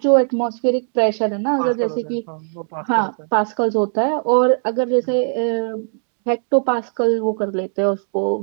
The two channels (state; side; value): silent; left; 63 dB below the other